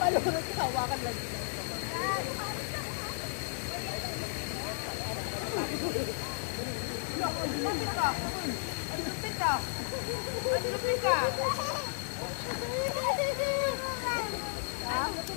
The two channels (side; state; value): right; silent; digital silence